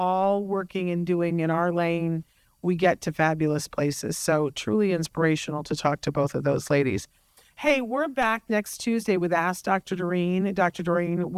working and doing in our lane, we get to fabulous places. So truly inspirational to talk to both of those ladies. Hey, we're back next Tuesday with Ask Dr. Doreen. Dr. Doreen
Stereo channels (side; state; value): both; identical; correlation 1.00